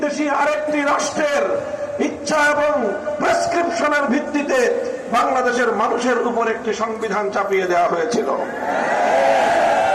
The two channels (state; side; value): identical; both; correlation 1.00